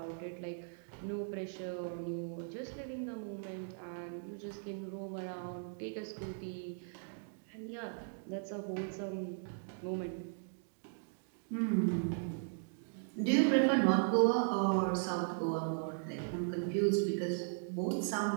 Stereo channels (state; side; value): silent; left; digital silence